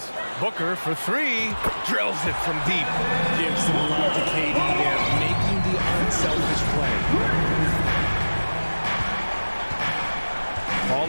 Booker for three, drills it from deep. Gives some love to KD there, making the unselfish play.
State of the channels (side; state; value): both; inverted; correlation -1.00